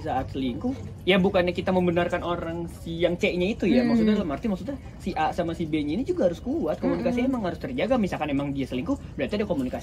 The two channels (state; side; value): identical; both; correlation 1.00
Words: saat selingkuh, ya bukannya kita membenarkan orang si yang C-nya itu ya. Maksudnya dalam arti maksudnya si A sama si B-nya ini juga harus kuat. Komunikasi emang harus terjaga. Misalkan emang dia selingkuh, berarti ada